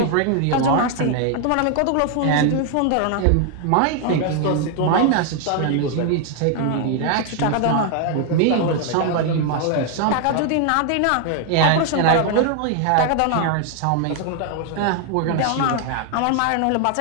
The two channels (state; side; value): different; both; correlation 0.00